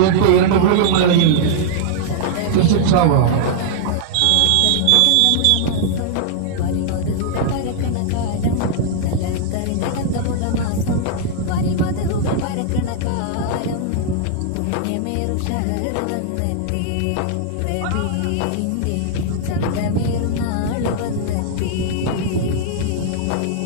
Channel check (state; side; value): different; both; correlation -0.01